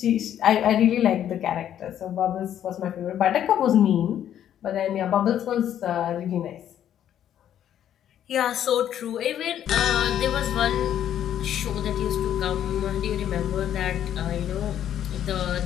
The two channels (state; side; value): quieter; right; 10.5 dB